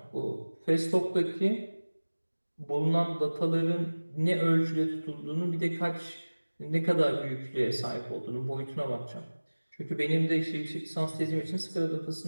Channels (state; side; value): inverted; both; correlation -1.00